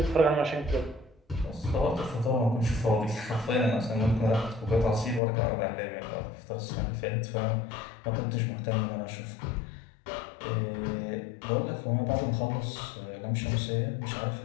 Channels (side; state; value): right; drops out; at 5.2 s